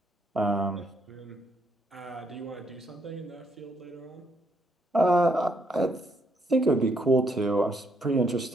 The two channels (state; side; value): normal; both; correlation 0.73